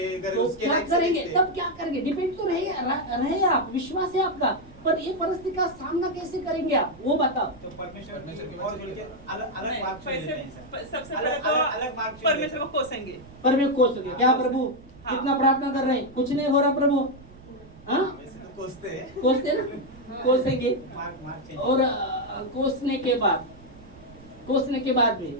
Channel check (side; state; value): right; noise; rumble, 21 dB below the sound